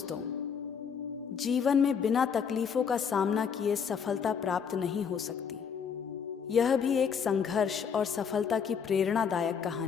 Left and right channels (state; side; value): quieter; right; 6.8 dB